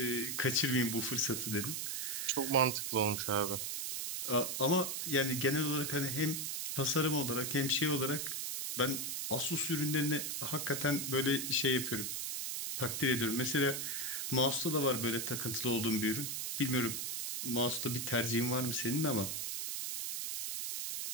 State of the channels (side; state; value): right; noise; hiss, 3 dB below the sound